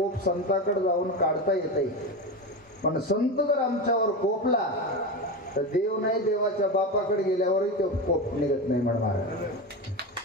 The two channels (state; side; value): normal; both; correlation 0.20